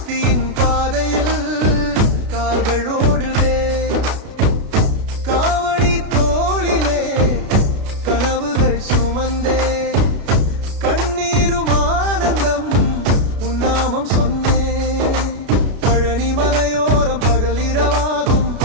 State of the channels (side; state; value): left; late; 33 ms